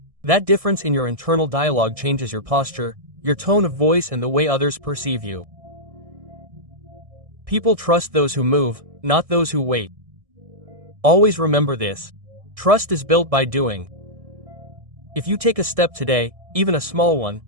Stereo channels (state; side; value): late; left; 1.6 ms